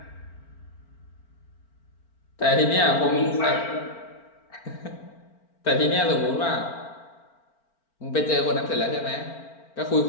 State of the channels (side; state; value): right; late; 4.4 ms